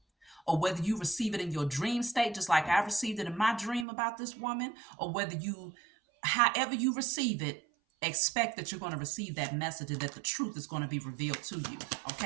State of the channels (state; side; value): drops out; left; at 3.9 s